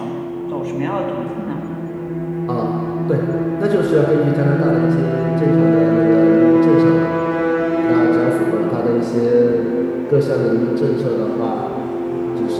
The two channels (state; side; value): identical; both; correlation 1.00